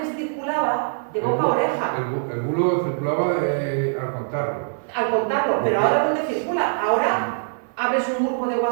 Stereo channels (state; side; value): silent; left; 59 dB below the other